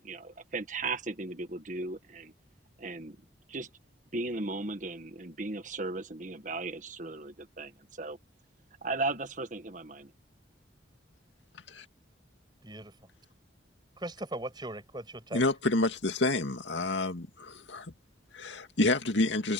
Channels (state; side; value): normal; both; correlation 0.25